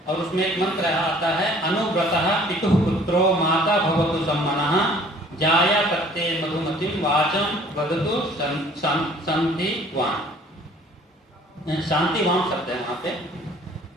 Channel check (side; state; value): both; normal; correlation 0.54